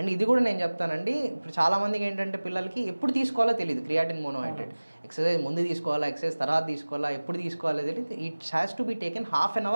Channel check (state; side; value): inverted; both; correlation -1.00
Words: ఇది కూడా నేను చెప్తానండి, ఇప్పుడు చాలామందికి ఏంటంటే పిల్లలకి ఎప్పుడు తీసుకోవాలో తెలియదు క్రియాటిన్ మోనోహైడ్రేట్. ఎక్సర్సైజ్ ముందు తీసుకోవాలా, ఎక్సర్సైజ్ తర్వాత తీసుకోవాలా, ఎప్పుడు తీసుకోవాలో తెలియదు. It has to be taken half an